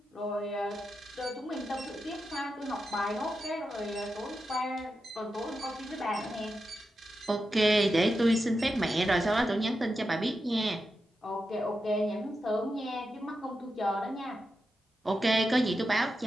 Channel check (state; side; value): normal; both; correlation 0.89